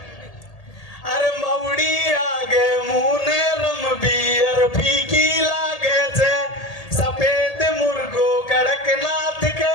अरे मौड़ी आगे मुने रम बियर फीकी लागे छे सफेद मुर्गो कड़कनाथ के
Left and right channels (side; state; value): right; late; 1.8 ms